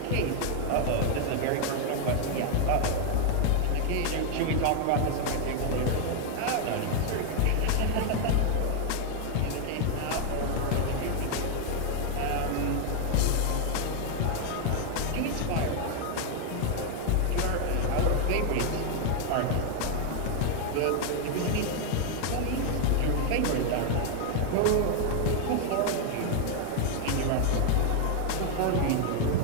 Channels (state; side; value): different; both; correlation 0.00